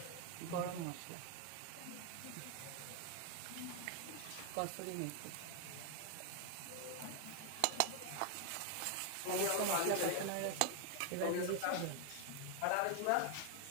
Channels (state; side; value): different; both; correlation 0.00